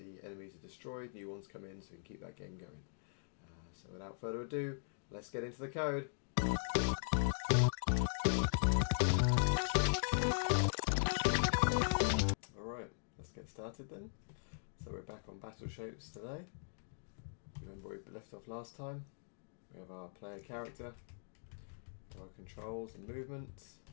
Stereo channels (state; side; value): silent; right; digital silence